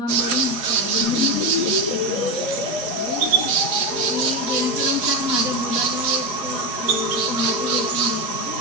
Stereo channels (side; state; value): left; late; 4.7 ms